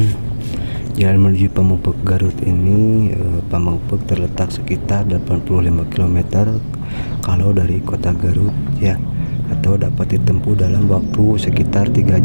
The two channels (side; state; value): both; inverted; correlation -1.00